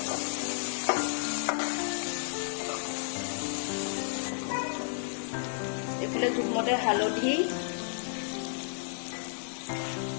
এইফালে জোখমতে হালধি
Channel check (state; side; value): silent; right; digital silence